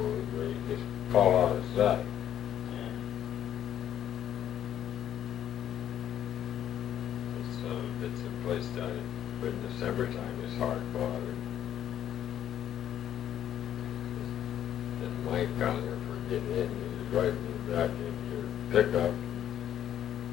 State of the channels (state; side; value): quieter; right; 10.7 dB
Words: where you just fall out of sight. It's a place down in, but in the summertime it's hard water. And Mike down there for getting in, he was riding me back in your pickup,